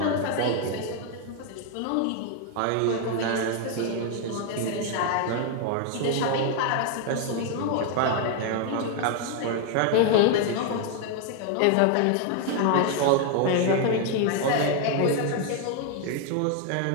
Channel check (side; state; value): both; different; correlation 0.01